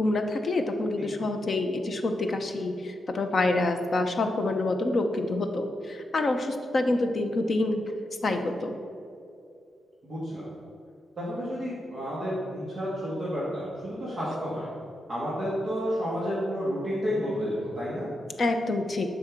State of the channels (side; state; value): both; normal; correlation 0.85